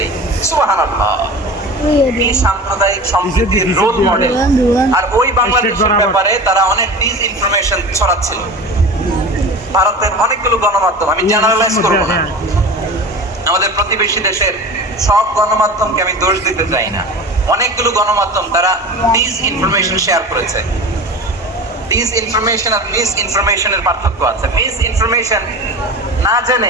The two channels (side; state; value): both; normal; correlation 0.33